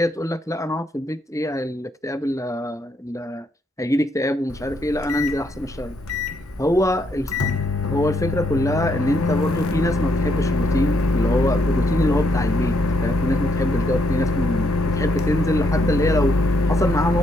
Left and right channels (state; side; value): normal; both; correlation 0.74